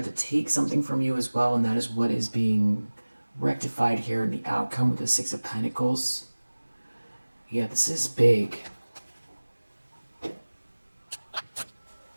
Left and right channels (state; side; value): inverted; both; correlation -1.00